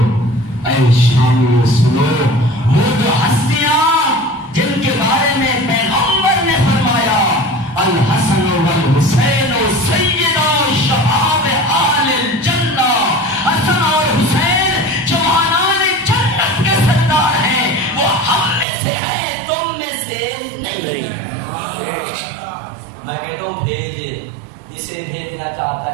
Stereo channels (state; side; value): drops out; left; at 18.7 s